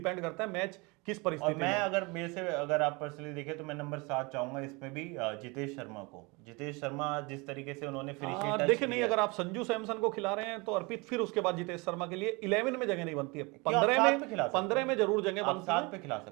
करता है मैच किस परिस्थिति में। अगर मेरे से अगर आप पर्सनली देखें तो मैं नंबर 7 चाहूंगा इसमें भी जितेश शर्मा को। जितेश शर्मा जिस तरीके से उन्होंने फिनिशिंग देखिए नहीं, अगर आप संजू सैमसन को खिला रहे हैं तो अर्पित, फिर उसके बाद जितेश शर्मा के लिए 11 में जगह नहीं बनती है। 15 में जरूर जगह बनती है। खिला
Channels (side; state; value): left; quieter; 27.2 dB